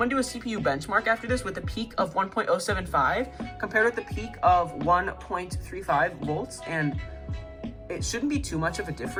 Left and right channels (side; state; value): both; identical; correlation 1.00